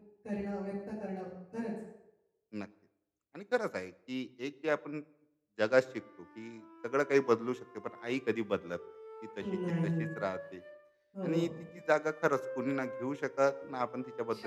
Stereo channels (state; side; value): identical; both; correlation 1.00